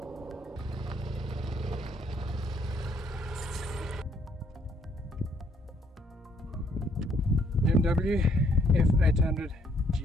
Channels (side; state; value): both; normal; correlation 0.67